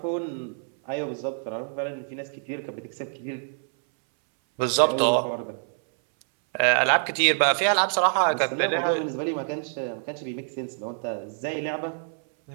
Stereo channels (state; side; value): silent; left; 60 dB below the other